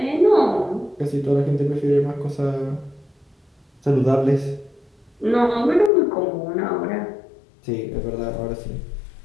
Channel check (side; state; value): right; drops out; at 5.9 s